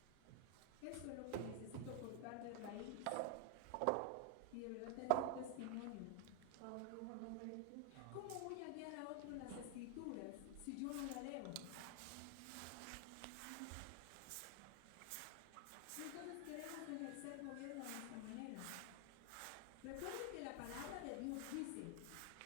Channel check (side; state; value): both; different; correlation 0.00